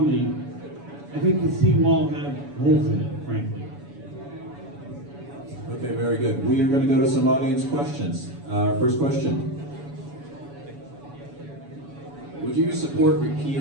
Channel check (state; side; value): late; left; 7.0 ms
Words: I think the seawall had holes in it, frankly. Okay, very good. We are going to go to some audience questions. First question. Would you support